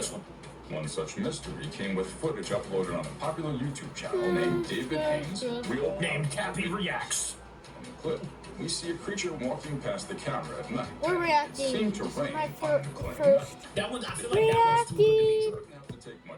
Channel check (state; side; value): identical; both; correlation 1.00